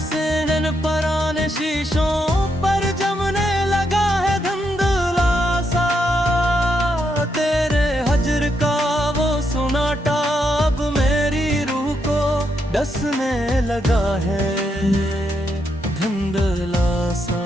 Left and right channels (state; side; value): normal; both; correlation 0.80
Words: पराने शीशों पर जमने लगा है धुंधला सा तेरे हजर का वो सुनाटा अब मेरी रूह को डसने लगा है धुंधला सा।